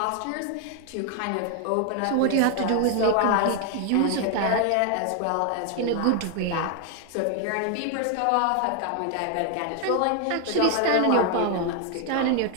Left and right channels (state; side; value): different; both; correlation 0.00